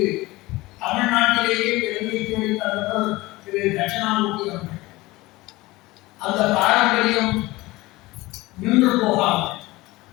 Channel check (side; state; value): right; quieter; 20.2 dB